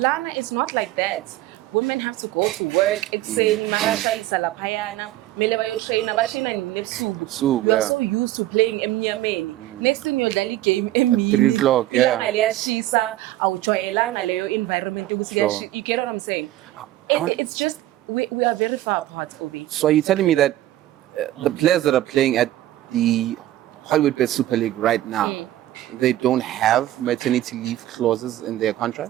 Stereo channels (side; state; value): left; quieter; 14.7 dB